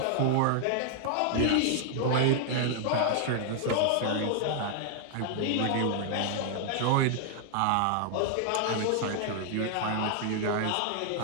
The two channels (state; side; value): different; both; correlation -0.01